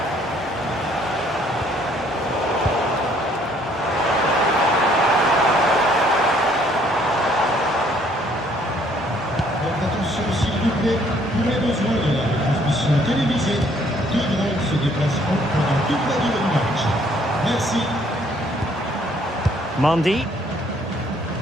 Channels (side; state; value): both; normal; correlation 0.63